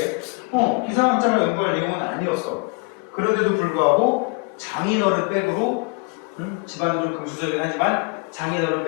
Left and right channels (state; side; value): quieter; right; 30.1 dB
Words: 기상학자가 연구할 내용은 아니었어. 그런데도 불구하고 장인어른 백으로, 집안은 좀 금수저긴 하지만 장인어른